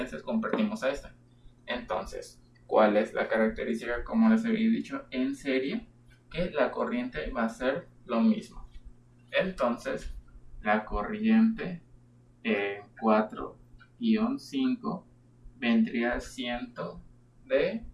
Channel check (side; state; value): both; identical; correlation 1.00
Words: convertimos a esta. Entonces, ¿cuál es la característica? Como les había dicho, en serie, que la corriente va a ser lo mismo. Entonces, la corriente en 4-5 vendría siendo de